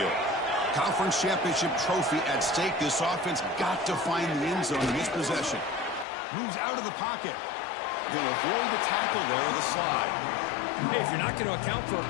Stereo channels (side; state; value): right; drops out; at 6.1 s